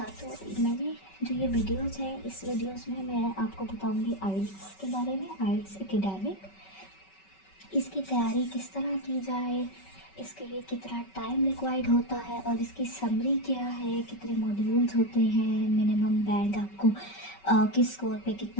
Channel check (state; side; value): late; right; 5.2 ms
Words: तो मैंने जो ये वीडियोस है, इस वीडियोस में मैं आपको बताऊंगी आइल्स के बारे में, आइल्स एकेडमिक। इसकी तैयारी किस तरह की जाए, इसके लिए कितना टाइम रिक्वायर्ड होता है और इसकी समरी क्या है, कितने मॉड्यूल्स होते हैं, मिनिमम बैंड आपको किस स्कोर पे